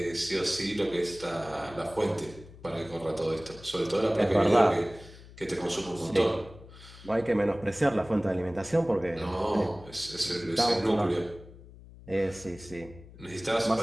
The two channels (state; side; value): noise; left; hum, 19 dB below the sound